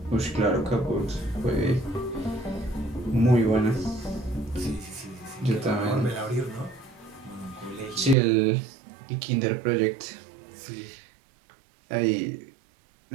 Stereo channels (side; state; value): left; drops out; at 8.2 s